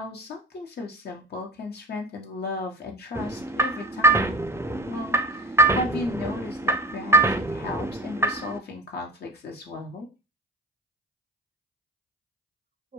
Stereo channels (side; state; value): both; normal; correlation 0.32